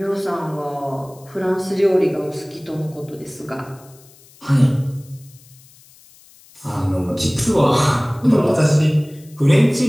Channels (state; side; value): noise; left; hiss, 26 dB below the sound